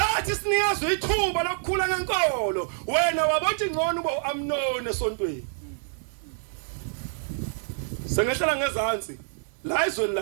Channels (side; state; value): left; silent; digital silence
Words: sinikezwe ithuba lokukhula ngenkolo wena wabothi ngcono uAmnoni esontweni sengehlala ngezantsi la izweni